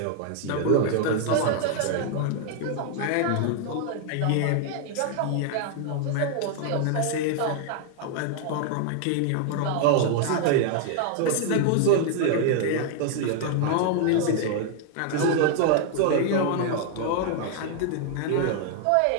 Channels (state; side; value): different; both; correlation 0.00